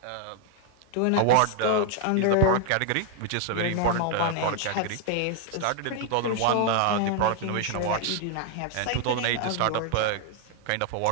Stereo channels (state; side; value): different; both; correlation 0.00